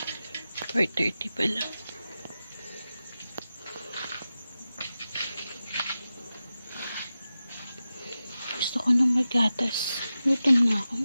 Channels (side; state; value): both; inverted; correlation -0.93